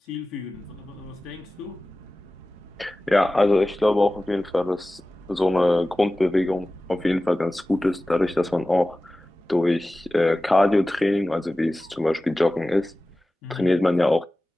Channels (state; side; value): normal; both; correlation 0.96